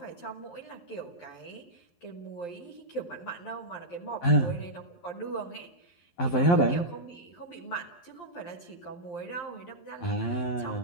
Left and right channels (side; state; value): right; late; 11 ms